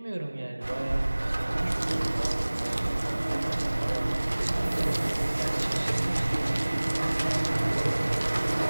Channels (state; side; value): inverted; both; correlation -1.00